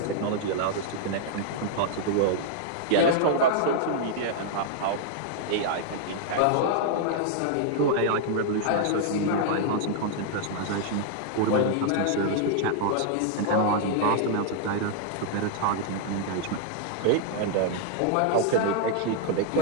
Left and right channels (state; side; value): different; both; correlation -0.01